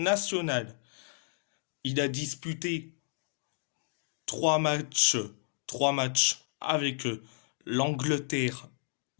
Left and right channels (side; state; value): right; silent; digital silence